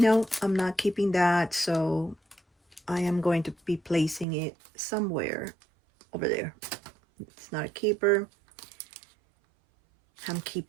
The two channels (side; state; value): left; drops out; at 4.2 s